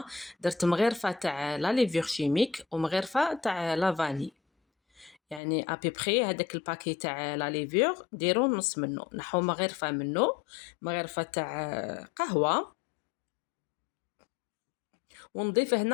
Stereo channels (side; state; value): right; drops out; at 5.4 s